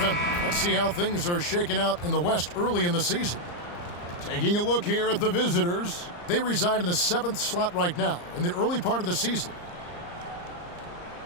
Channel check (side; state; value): right; late; 34 ms